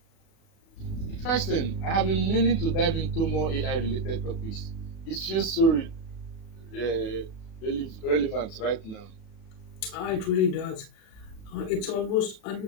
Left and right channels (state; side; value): late; right; 36 ms